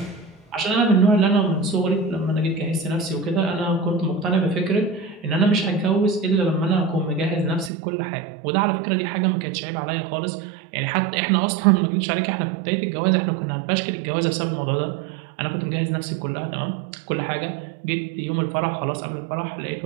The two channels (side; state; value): left; drops out; at 7.7 s